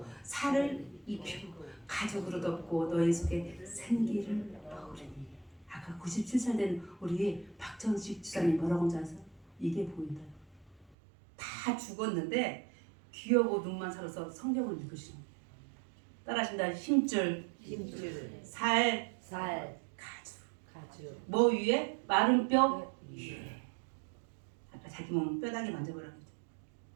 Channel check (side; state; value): left; drops out; at 11.0 s